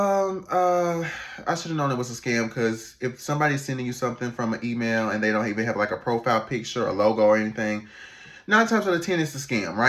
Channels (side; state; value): both; identical; correlation 1.00